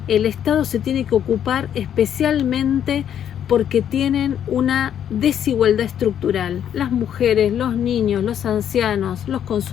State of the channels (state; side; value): quieter; right; 9.6 dB